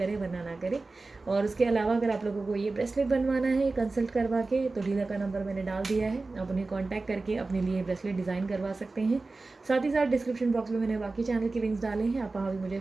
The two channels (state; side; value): quieter; left; 3.5 dB